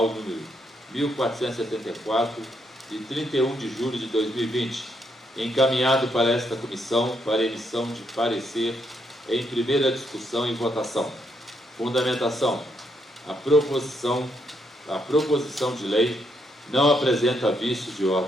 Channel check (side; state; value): both; normal; correlation 0.76